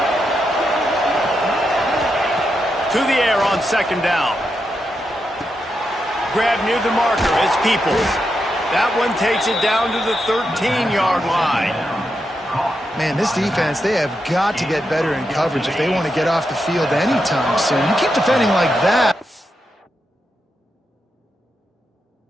To the air on 2nd down. Grab near the marker. It's Peoples. That one takes it down to the 13-yard line. Man, this defense, they have got to get better in coverage if they want to get off the field anytime soon. You keep defending like that.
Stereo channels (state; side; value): normal; both; correlation 0.85